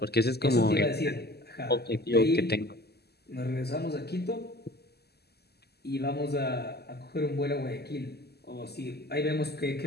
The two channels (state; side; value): late; right; 0.47 ms